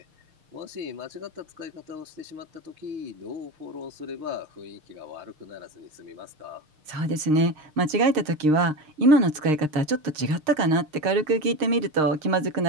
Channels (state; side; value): late; left; 6.6 ms